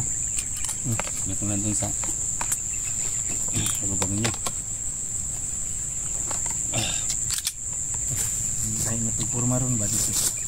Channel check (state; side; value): identical; both; correlation 1.00